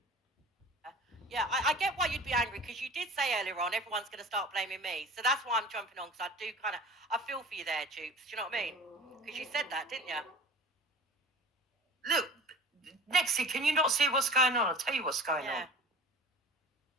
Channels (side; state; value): both; normal; correlation 0.40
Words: Yeah, I get why you'd be angry because you did say earlier on everyone's going to start blaming me. So that's why I'm jumping on because I do kind of, I feel for you there, Jupes. Do you know what I mean? Because you said that, didn't you? Look, Nexie, can you not see what's going on? I'll tell you what's going on.